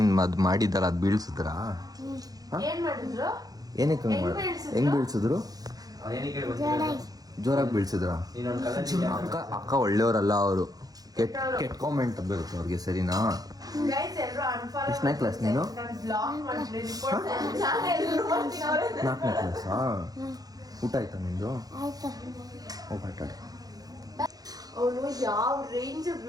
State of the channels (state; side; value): late; left; 0.18 ms